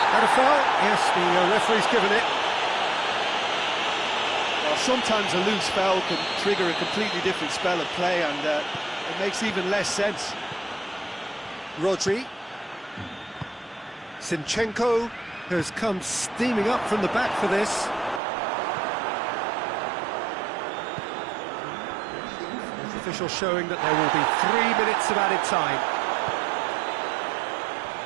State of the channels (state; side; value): drops out; left; at 18.2 s